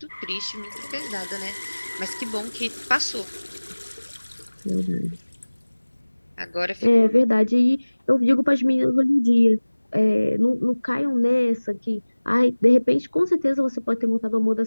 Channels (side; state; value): both; inverted; correlation -1.00